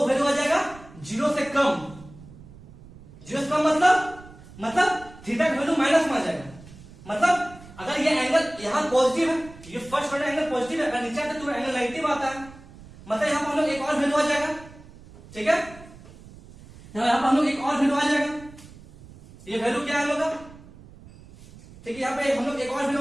वैल्यू आ जाएगा 0 से कम। 0 से कम मतलब थीटा की वैल्यू माइनस में आ जाएगा। मतलब अगर ये एंगल यहाँ पॉजिटिव है, ये फर्स्ट ऑर्डर एंगल पॉजिटिव है, अगर नीचे आता है तो एंगल नेगेटिव आता है, मतलब यहाँ पर हम लोग एक और वैल्यू आ जाएगा। ठीक है, यहाँ पर हम लोग एक और वैल्यू आ जाएगा। ये वैल्यू क्या है हम लोग का? ठीक है, यहाँ पे हम लोग एक और वैल्यू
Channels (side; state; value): right; noise; rumble, 20 dB below the sound